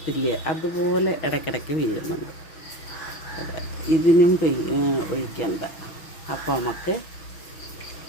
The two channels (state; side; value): late; right; 6.2 ms